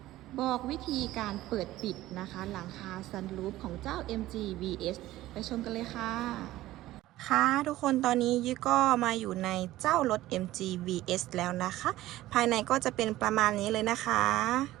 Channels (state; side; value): quieter; left; 15.8 dB